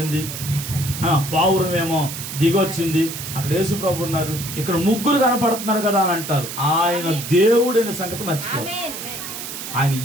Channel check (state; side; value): noise; right; hiss, 8 dB below the sound